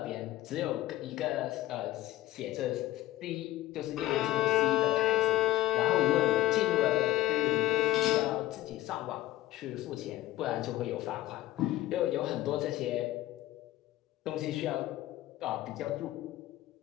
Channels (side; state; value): right; quieter; 15.5 dB